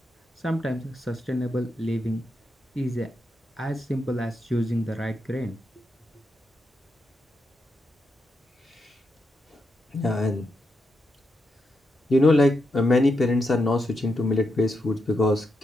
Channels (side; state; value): both; normal; correlation 0.84